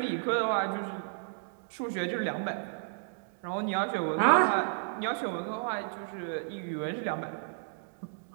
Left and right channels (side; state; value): left; silent; digital silence